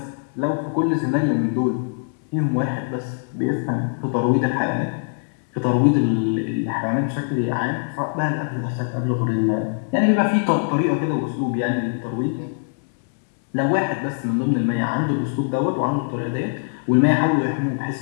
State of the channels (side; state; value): right; silent; digital silence